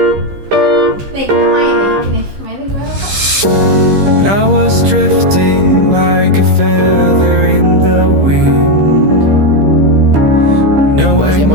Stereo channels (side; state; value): left; late; 15 ms